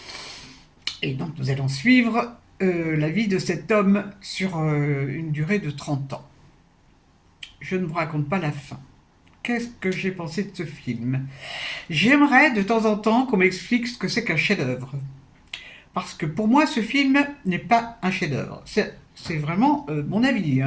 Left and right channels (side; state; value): both; identical; correlation 1.00